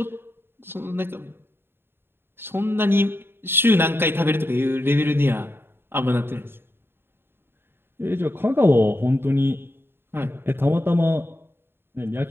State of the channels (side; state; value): left; late; 0.11 ms